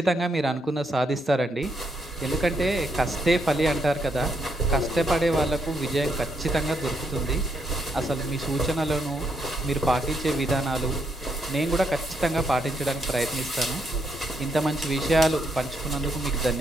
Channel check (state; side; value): normal; both; correlation 0.77